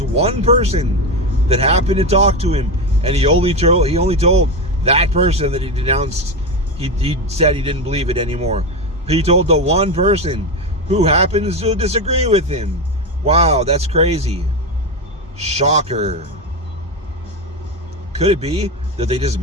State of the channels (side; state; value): both; normal; correlation 0.15